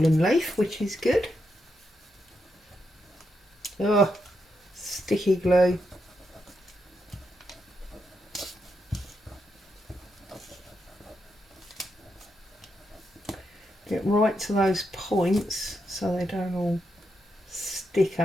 leaf, which is good. Oh, sticky glue. Get right to those points so they don't all stick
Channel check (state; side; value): normal; both; correlation 0.83